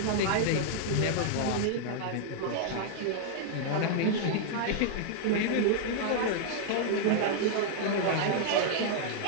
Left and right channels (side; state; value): both; different; correlation -0.01